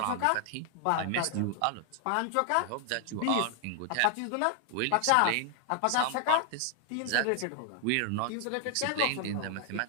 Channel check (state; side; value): different; both; correlation 0.00